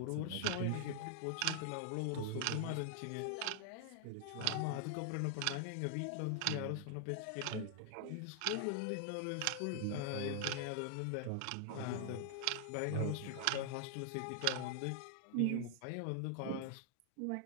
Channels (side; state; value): both; different; correlation 0.00